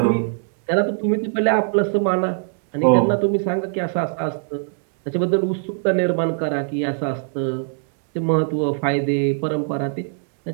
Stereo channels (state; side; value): silent; left; 64 dB below the other